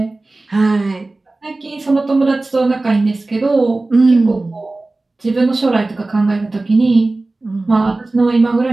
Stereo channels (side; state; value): left; quieter; 3.1 dB